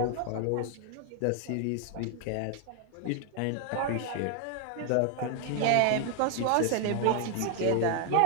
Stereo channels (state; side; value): different; both; correlation 0.00